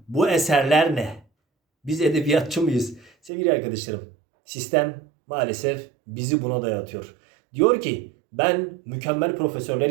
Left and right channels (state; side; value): drops out; left; at 3.3 s